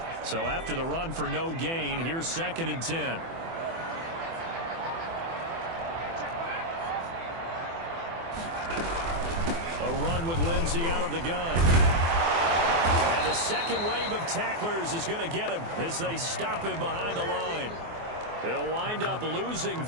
So after the run for no gain, here's second and 10. A run with Lindsay out of the gun. And the second wave of tacklers is going to get him as they stop him behind the line. They'll wind up losing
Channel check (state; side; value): late; left; 24 ms